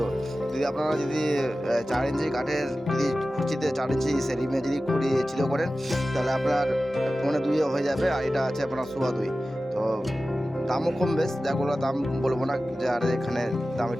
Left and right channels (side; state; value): both; normal; correlation 0.95